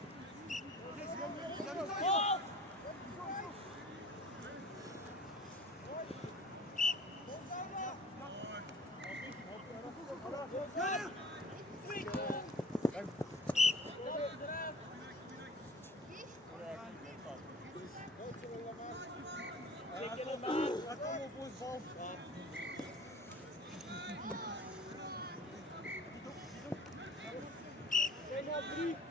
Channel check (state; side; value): normal; both; correlation 0.45